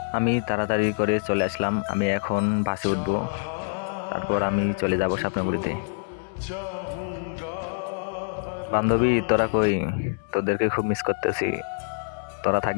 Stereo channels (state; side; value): silent; right; digital silence